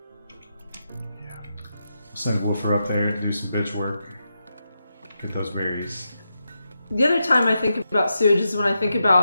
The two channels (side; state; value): both; inverted; correlation -0.86